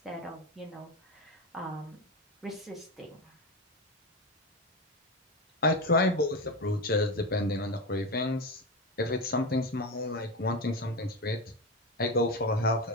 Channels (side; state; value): both; normal; correlation 0.19